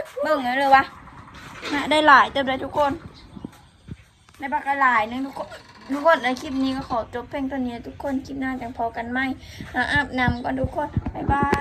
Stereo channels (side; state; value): both; identical; correlation 1.00